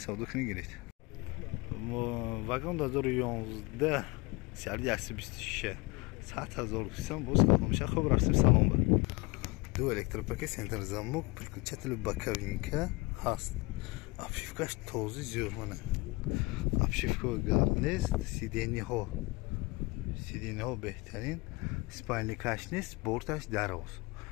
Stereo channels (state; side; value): quieter; right; 25.1 dB